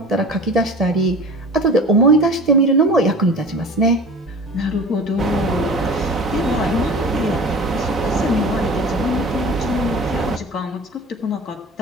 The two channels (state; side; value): normal; both; correlation 0.39